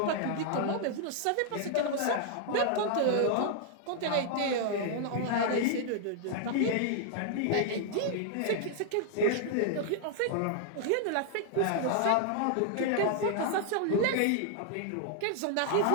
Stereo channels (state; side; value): different; both; correlation 0.00